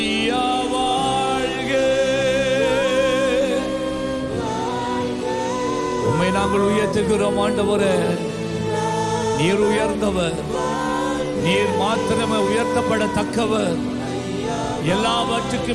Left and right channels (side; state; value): both; identical; correlation 1.00